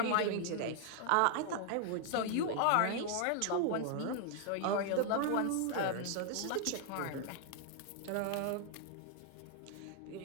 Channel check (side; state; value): both; different; correlation 0.00